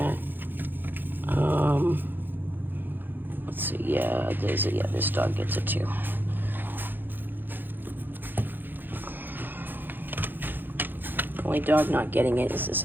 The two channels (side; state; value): left; late; 0.093 ms